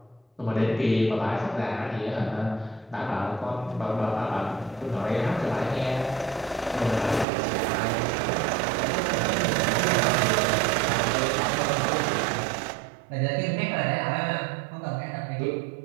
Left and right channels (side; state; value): left; drops out; at 7.2 s